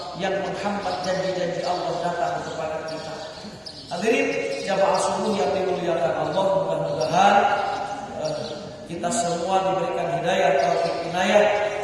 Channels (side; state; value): both; identical; correlation 1.00